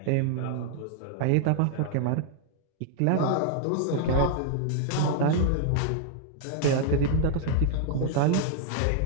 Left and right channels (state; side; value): different; both; correlation 0.00